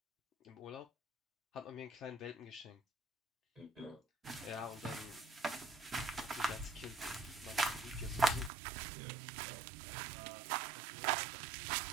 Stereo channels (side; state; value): left; drops out; at 8.5 s